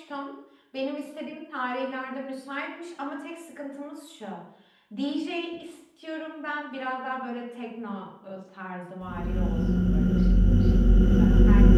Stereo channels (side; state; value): both; identical; correlation 1.00